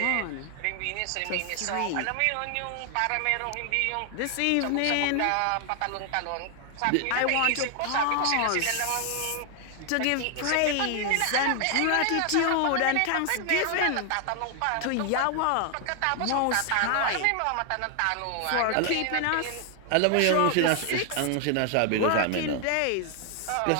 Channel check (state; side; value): different; both; correlation 0.00